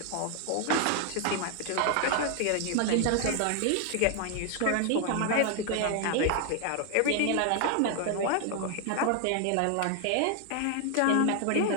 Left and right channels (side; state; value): both; different; correlation 0.00